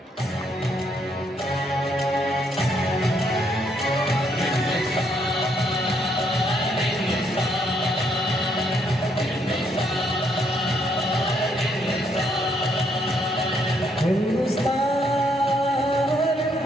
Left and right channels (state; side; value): normal; both; correlation 0.72